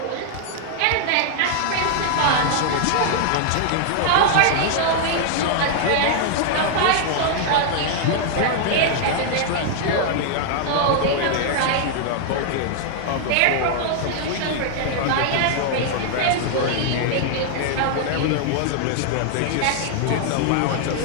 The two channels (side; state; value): both; different; correlation -0.01